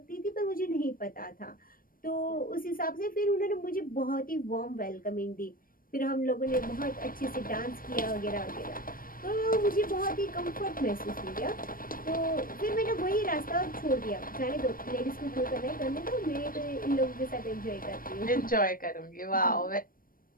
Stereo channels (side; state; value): right; late; 0.41 ms